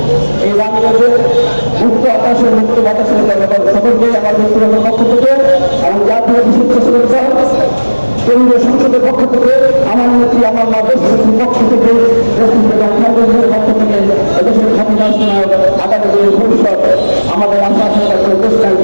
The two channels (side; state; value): both; inverted; correlation -1.00